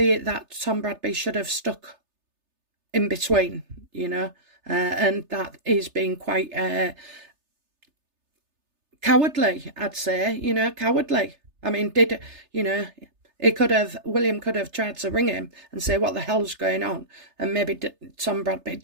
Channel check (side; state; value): left; late; 3.3 ms